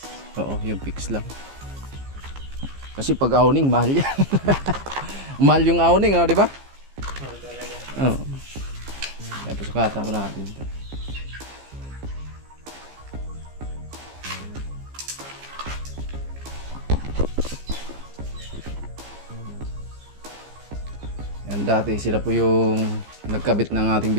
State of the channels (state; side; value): late; left; 15 ms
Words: Oo, yung fix lang. Kasi pag awning, mahal yan. Mahal yung awning, di ba? Oo. Kaya pasukatan mo natin ito. Yan, dati sila po yung nagkabit ng ating